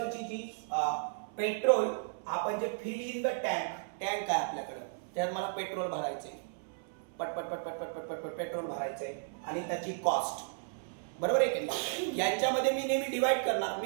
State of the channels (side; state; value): left; silent; 55 dB below the other